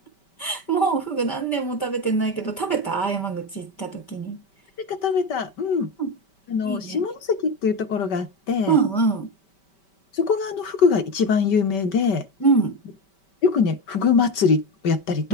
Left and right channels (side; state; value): right; late; 5.2 ms